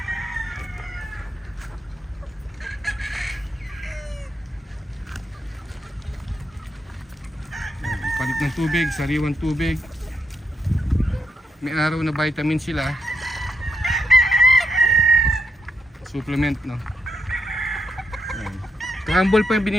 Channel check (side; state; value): both; normal; correlation 0.81